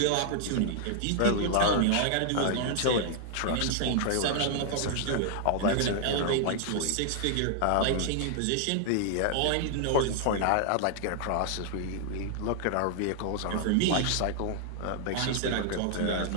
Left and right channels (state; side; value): different; both; correlation -0.01